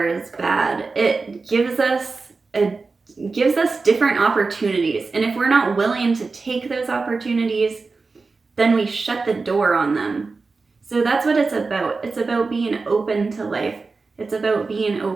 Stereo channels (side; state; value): left; quieter; 4.1 dB